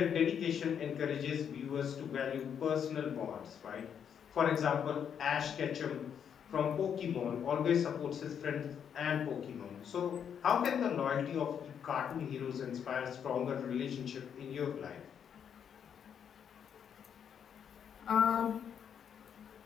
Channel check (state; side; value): quieter; right; 8.1 dB